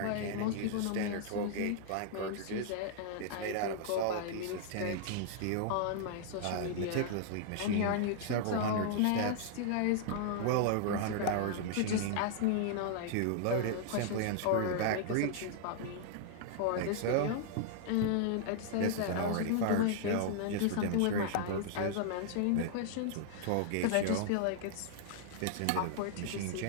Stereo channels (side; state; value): both; different; correlation -0.01